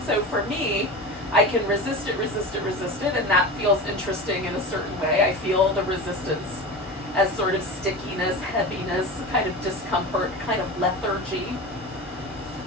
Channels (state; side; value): normal; both; correlation 0.29